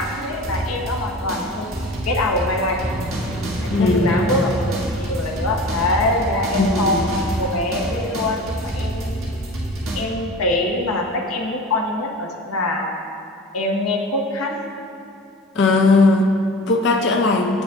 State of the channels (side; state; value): both; normal; correlation 0.38